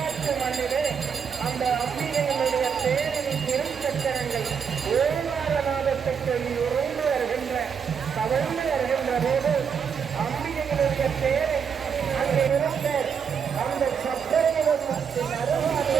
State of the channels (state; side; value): quieter; left; 6.8 dB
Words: மண்ணிலே அந்த அம்பிகையினுடைய தேரின் திருச்சக்கரங்கள் ஓங்காரநாதத்தை சொல்லி உறைந்து வருகின்ற தவழ்ந்து வருகின்ற போது அம்பிகையினுடைய தேரை அங்கே இருந்த அந்த சக்கரத்தின்